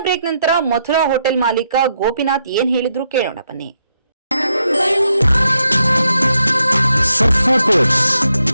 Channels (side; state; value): both; inverted; correlation -0.80